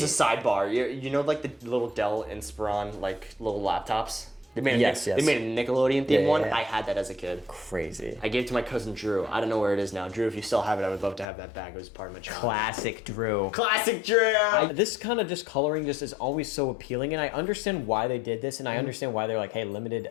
is a sidebar. You know, like the little Dell Inspiron, like little laptops. They made Yes. They made a Nickelodeon themed one. Yeah. I had that as a kid. Crazy. I gave it to my cousin Drew. I don't know where it is now. Drew, if you still have it, I would love to have that back. It was part of my childhood. Classic Drew. Classic Drew. This kind of just coloring just is always so appealing, and I understand why they did this, and I understand why they're like, hey, limited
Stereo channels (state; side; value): drops out; right; at 11.2 s